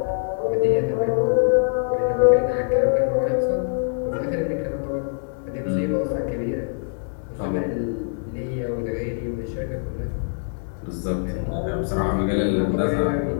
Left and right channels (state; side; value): silent; right; 63 dB below the other